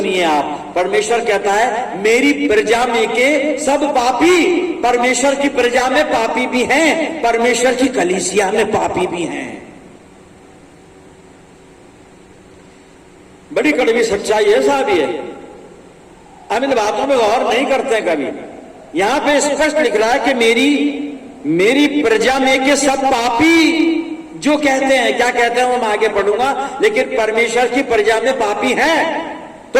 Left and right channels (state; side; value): identical; both; correlation 1.00